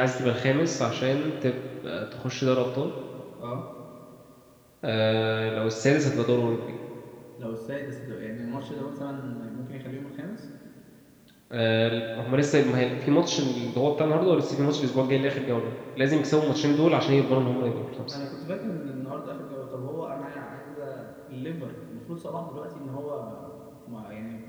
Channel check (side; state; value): both; identical; correlation 1.00